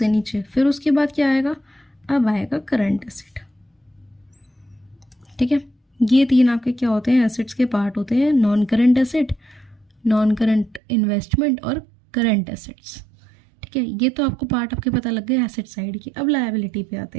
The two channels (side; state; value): left; drops out; at 10.8 s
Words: नीचे, फिर उसके बाद क्या आएगा, अब आएगा करंट एसेट, ठीक है। ये तीन आपके क्या होते हैं, एसेट्स के पार्ट होते हैं, non current asset, non current investment और करंट एसेट्स, ठीक है। ये तो आपको पार्ट आपके पता लग गए एसेट साइड की। अब लायबिलिटी पे आते